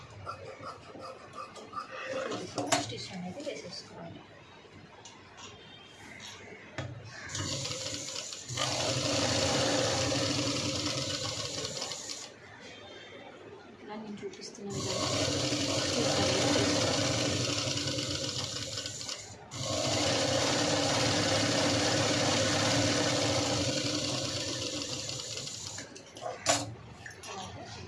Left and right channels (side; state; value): both; identical; correlation 1.00